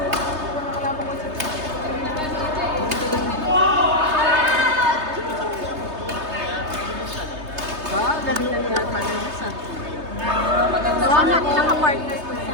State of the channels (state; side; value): late; left; 3.3 ms